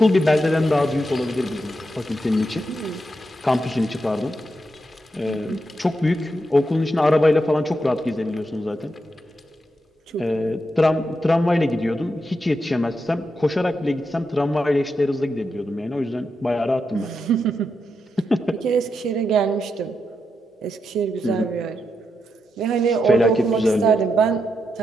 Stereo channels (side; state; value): both; normal; correlation 0.85